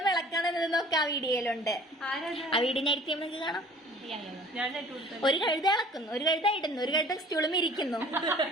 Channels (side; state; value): both; normal; correlation 0.50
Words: ഇളക്കണമെന്നൊക്കെ ആ വീഡിയോയിലുണ്ട്. ആ വീഡിയോ ഞാൻ എടുത്ത് നമുക്ക് കാണാം. ഒരു കഴുത ഇളക്കുന്നു, ഒരു കഴുത ഇടുന്നു, ഒരു കഴുത സ്റ്റൂളും ഇരിക്കുന്നു.